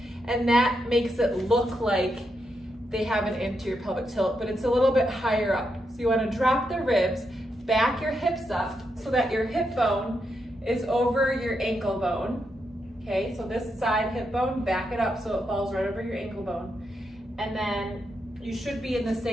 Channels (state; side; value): normal; both; correlation 0.83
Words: and that makes it look like they have an anterior pelvic tilt, but it's a little bit higher up. So you want to drop the ribs, back your hips up so that your hip bone is over your ankle bone. Okay, so this side hip bone, back it up so it falls right over your ankle bone. And then you should be in the